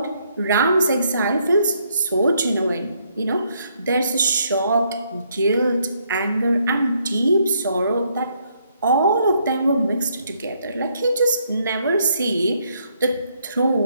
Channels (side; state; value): both; inverted; correlation -0.72